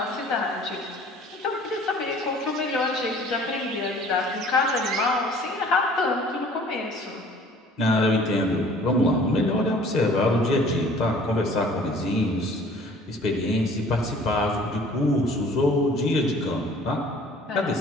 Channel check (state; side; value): normal; both; correlation 0.51